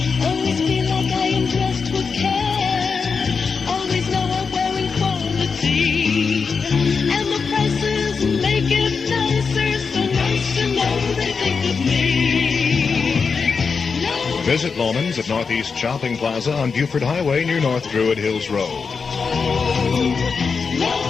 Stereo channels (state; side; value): quieter; right; 5.3 dB